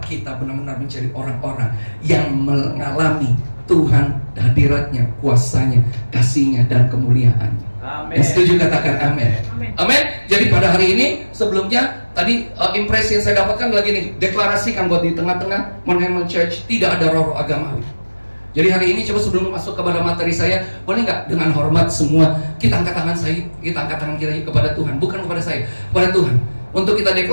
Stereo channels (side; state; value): both; inverted; correlation -1.00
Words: kita benar-benar menjadi orang-orang yang mengalami Tuhan, hadiratnya, kuasanya, kasihnya, dan kemuliaannya. Amin. Yang setuju katakan amin. Amin. Jadi pada hari ini, sebelumnya tadi impresi yang saya dapatkan lagi nih, deklarasikan buat di tengah-tengah Mount Hermon Church tidak ada roh agamawi. Jadi hari ini coba sebelum masuk kepada materi saya, boleh nggak dengan hormat semua kita angkat tangan kita kepada Tuhan, bukan kepada saya, kepada Tuhan, untuk kita